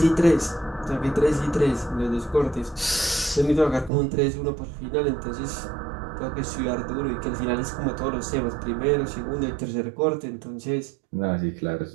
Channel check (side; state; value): left; drops out; at 3.9 s